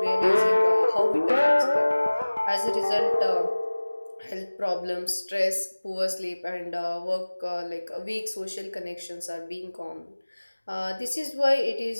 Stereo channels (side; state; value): both; inverted; correlation -1.00